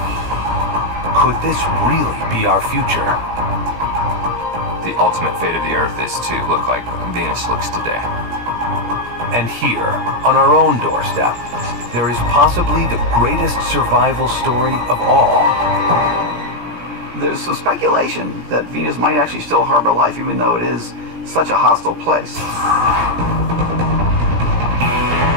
Could this really be our future? The ultimate fate of the Earth is to look like Venus looks today. And here, on our own doorstep, there is possibly the greatest survival story of all. There's some speculation that Venus might actually still harbor life, even though it is such a hostile place.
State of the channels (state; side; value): late; left; 17 ms